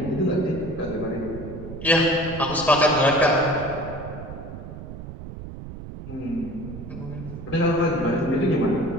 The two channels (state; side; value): noise; right; rumble, 11 dB below the sound